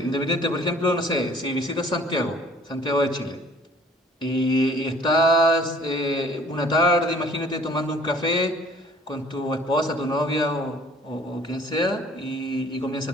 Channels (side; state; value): both; normal; correlation 0.54